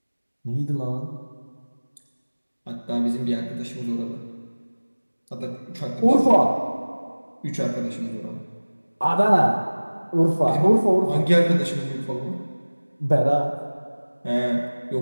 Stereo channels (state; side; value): inverted; both; correlation -1.00